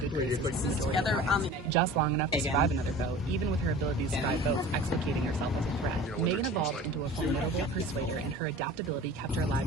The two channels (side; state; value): both; normal; correlation 0.40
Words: graces of the majority of points, just long enough to survive another vote, even with her ability to survive votes, explicating herself as a threat. Megan evolved into a formidable persuader, and her adaptability kept her